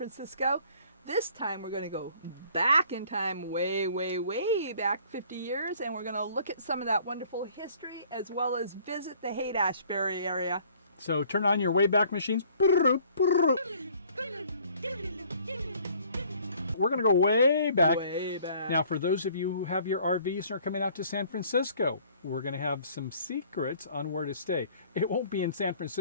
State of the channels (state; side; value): inverted; both; correlation -0.56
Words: This time we're going to go back in time, way, way, way back 50 years, and we're going to look at some of that wonderful history as well as visit the Haight Ashbury area. So turn on your Wayback Machines. We're going to go way back. Way back. Now, for those of you who have your RVs and are coming out to San Francisco, we're going to have some secrets on where to stay. It won't be in San